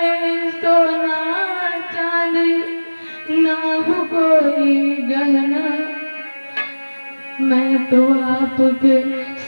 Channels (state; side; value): inverted; both; correlation -1.00